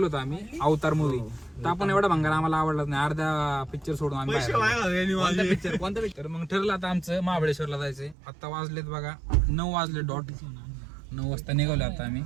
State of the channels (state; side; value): drops out; left; at 8.2 s